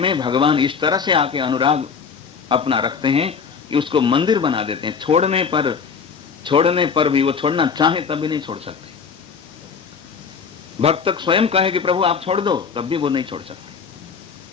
भगवान इस तरह से आके अनुराग अपना रखते हैं कि उसको मंदिर बना देते हैं। छोड़ने पर भी, वो छोड़ना चाहे तब भी नहीं छोड़ सकते। भक्त स्वयं कहे कि प्रभु आप छोड़ दो, तब भी वो नहीं छोड़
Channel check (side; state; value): right; quieter; 6.0 dB